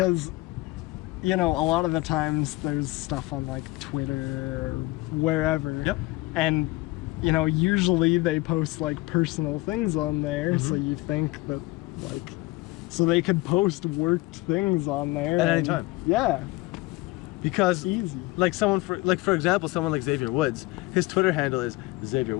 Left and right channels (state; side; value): quieter; right; 20.9 dB